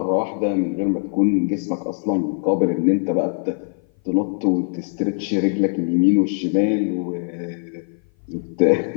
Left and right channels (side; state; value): right; silent; 57 dB below the other